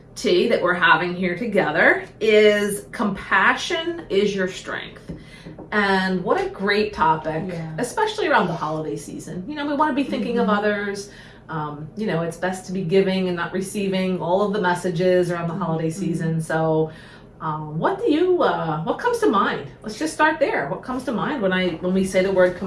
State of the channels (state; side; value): identical; both; correlation 1.00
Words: tea that we're having here together is compassion is your strength. And what a great topic, especially around the holiday season. You know, we want to be thinking of others. You know, it's best to be giving and not receiving all of the messages around the holiday season. So what comes to mind? Let's just start there. What comes to mind when we say the word